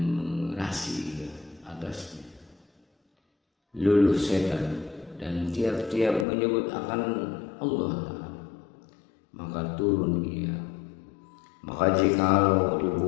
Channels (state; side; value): drops out; right; at 6.2 s